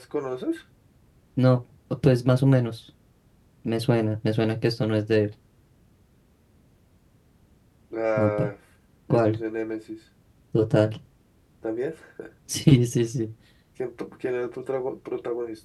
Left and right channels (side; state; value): both; identical; correlation 1.00